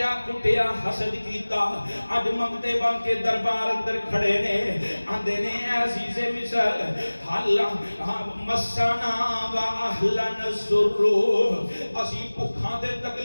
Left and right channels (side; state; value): both; inverted; correlation -1.00